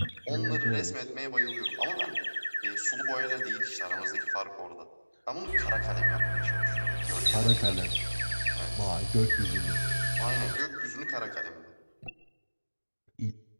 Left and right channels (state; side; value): inverted; both; correlation -1.00